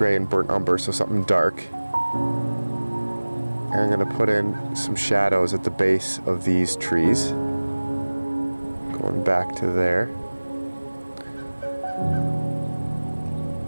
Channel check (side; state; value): both; inverted; correlation -1.00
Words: and burnt umber, so something dark. And I'm going to put in some shadows at the base of these trees. Going back to there.